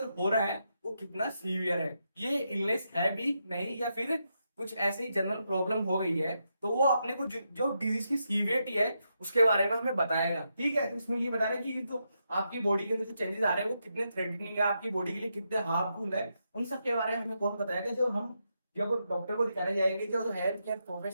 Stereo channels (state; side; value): inverted; both; correlation -0.83